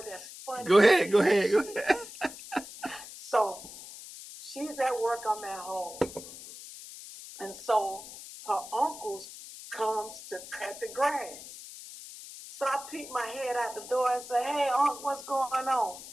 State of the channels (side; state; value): left; noise; hiss, 14 dB below the sound